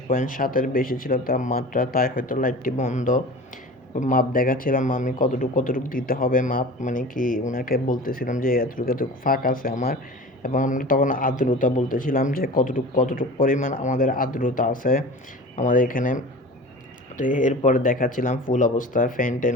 বেশি ছিল তাপমাত্রা, তাই হয়তো লাইটটি বন্ধ। মাপ দেখাচ্ছিলাম আমি কতটুকু দিতে হবে মাপ, মানে কি ওনাকে বলতেছিলাম যে এতটুকু ফাঁক আছে আমার। এবং আমরা তখন আর্দ্রতা বলতেছিলাম যে কতটুকু পরিমাণ আমাদের আর্দ্রতা আছে আমাদের এখানে। তো এরপরে দেখাচ্ছিলাম ফুল অবস্থা, ফ্যান ট্যান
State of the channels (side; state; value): both; normal; correlation 0.37